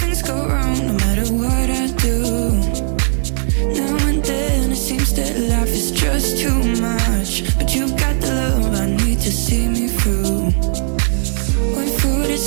go wrong no matter what I do. Now and then it seems that life is just too much, but you got the love I need to see me through. When food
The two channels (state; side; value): silent; left; digital silence